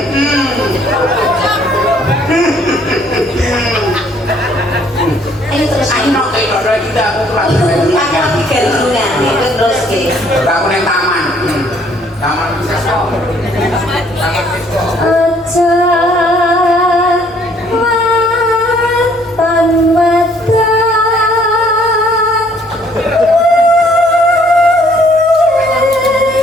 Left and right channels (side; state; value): both; normal; correlation 0.62